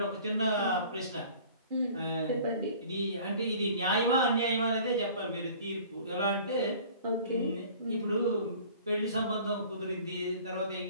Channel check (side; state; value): both; inverted; correlation -0.48